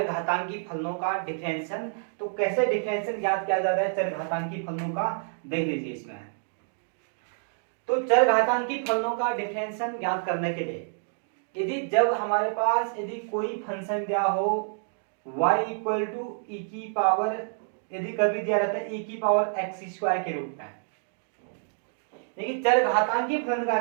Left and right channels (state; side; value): silent; left; digital silence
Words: फलनों का डिफरेंशियल। तो कैसे डिफरेंशियल ज्ञात किया जाता है चरघातांकी फलनों का, देख लीजिए इसमें। तो चरघातांकी फलनों का डिफरेंशियल ज्ञात करने के लिए यदि जब हमारे पास यदि कोई फंक्शन दिया हो y इक्वल टू ई की पावर, यदि कभी दिया रहता है e की पावर x स्क्वायर के रूप में, देखिए चरघातांकी फलन का